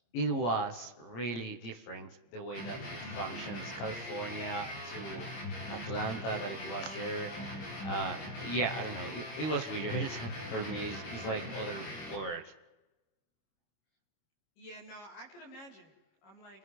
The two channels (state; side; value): late; right; 26 ms